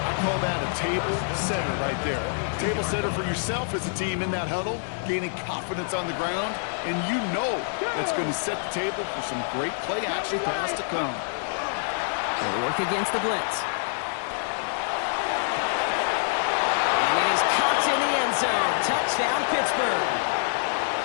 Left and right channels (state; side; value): silent; right; digital silence